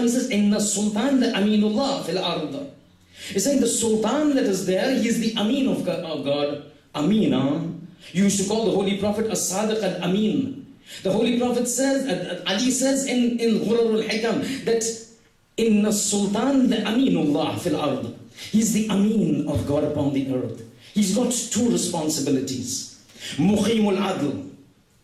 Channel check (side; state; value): both; identical; correlation 1.00